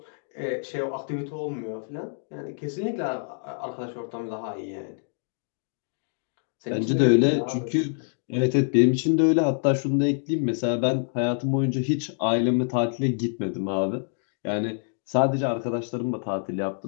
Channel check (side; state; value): right; silent; digital silence